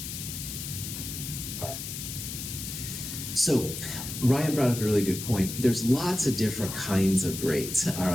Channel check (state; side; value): noise; left; hiss, 7 dB below the sound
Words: All right. So, Ryan brought up a really good point. There's lots of different kinds of rates, all